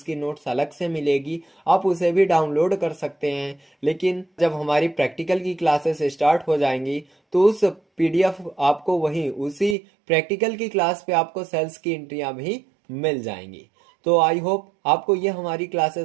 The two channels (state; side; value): drops out; left; at 9.8 s